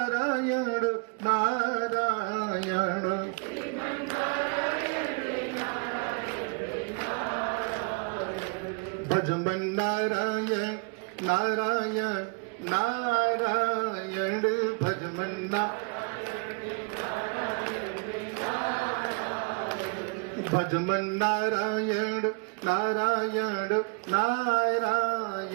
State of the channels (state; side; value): quieter; left; 32.9 dB